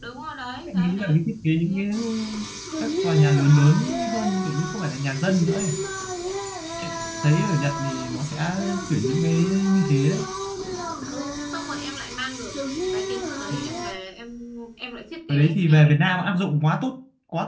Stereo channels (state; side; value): identical; both; correlation 1.00